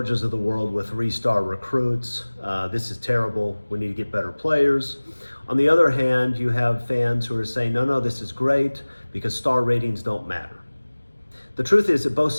of the world with three-star recruits. This is terrible. We need to get better players. On the other hand, you have fans who are saying, no, this is great because star ratings don't matter. The truth is that both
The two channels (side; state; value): both; inverted; correlation -1.00